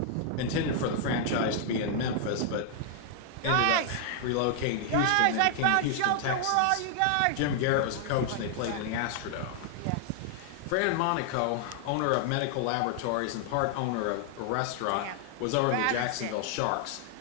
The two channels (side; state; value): both; different; correlation 0.00